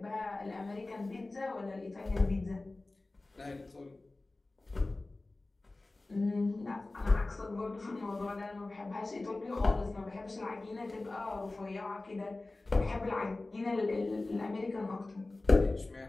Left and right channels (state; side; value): quieter; right; 3.1 dB